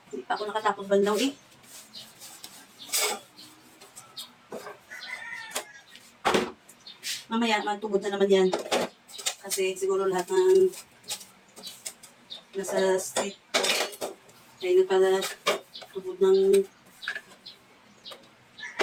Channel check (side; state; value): both; identical; correlation 1.00